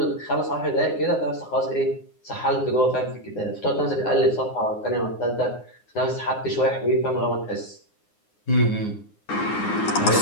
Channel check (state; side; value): late; right; 9.6 ms